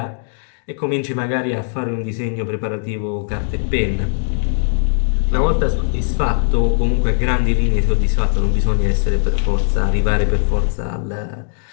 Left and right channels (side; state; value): right; silent; digital silence